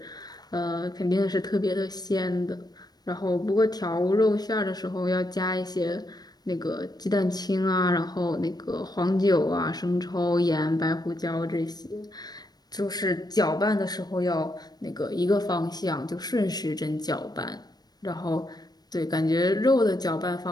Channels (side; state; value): right; late; 0.19 ms